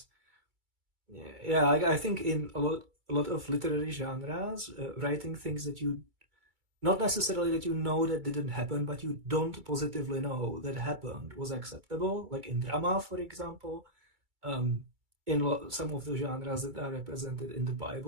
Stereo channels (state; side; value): late; left; 2.3 ms